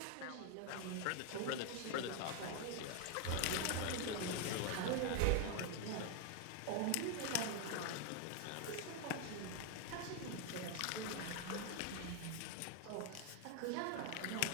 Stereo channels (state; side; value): different; both; correlation 0.01